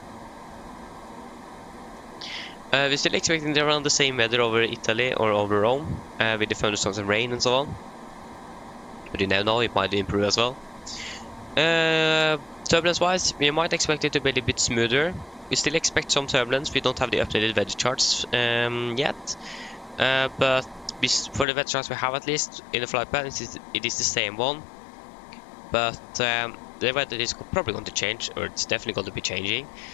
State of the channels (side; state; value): right; drops out; at 21.5 s